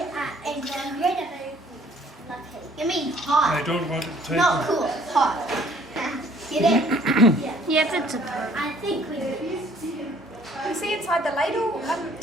are incredibly lucky. You mean hot? I don't want it to take Not cool, hot. Get it? Yes, it's a. I think we do. You see inside the ladle,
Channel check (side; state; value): both; normal; correlation 0.59